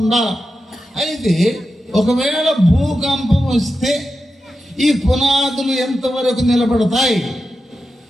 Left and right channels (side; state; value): both; normal; correlation 0.90